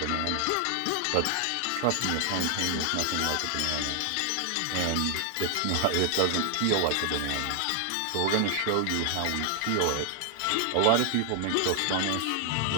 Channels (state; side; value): different; both; correlation 0.00